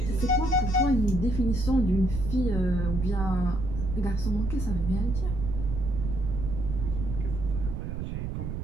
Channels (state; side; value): noise; right; rumble, 4 dB below the sound